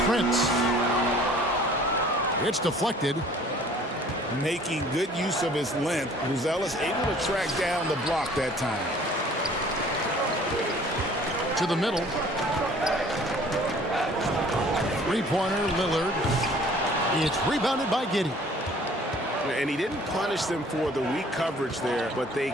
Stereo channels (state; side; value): normal; both; correlation 0.53